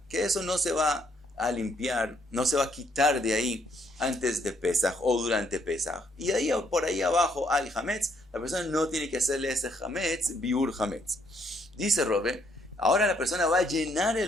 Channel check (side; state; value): both; normal; correlation 0.70